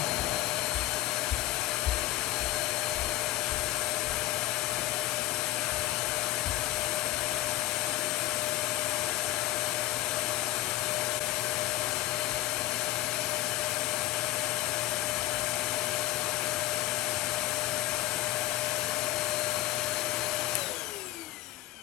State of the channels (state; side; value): quieter; right; 15.4 dB